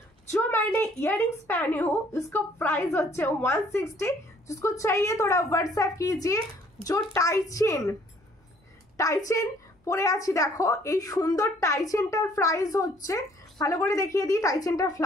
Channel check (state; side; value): normal; both; correlation 0.60